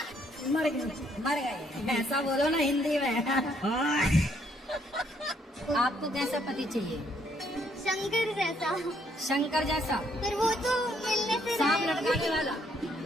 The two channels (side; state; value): both; normal; correlation 0.69